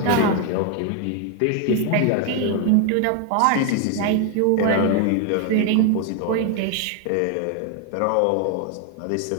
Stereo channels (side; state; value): both; different; correlation 0.01